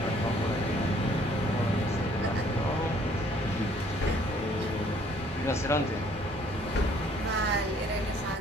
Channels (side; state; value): both; normal; correlation 0.61